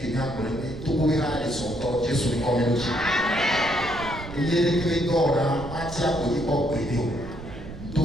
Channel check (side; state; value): right; noise; rumble, 12 dB below the sound